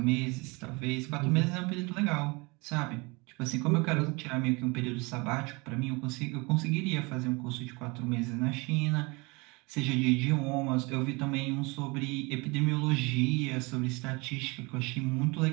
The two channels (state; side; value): quieter; left; 26.9 dB